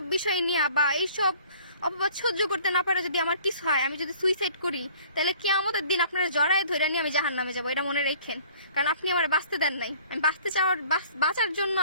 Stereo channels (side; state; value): both; inverted; correlation -0.53